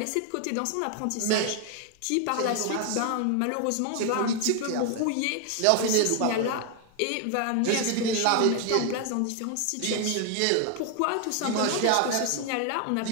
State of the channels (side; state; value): both; different; correlation 0.00